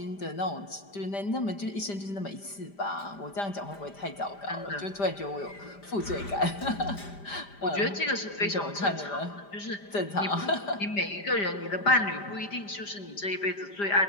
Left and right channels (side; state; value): right; late; 5.0 ms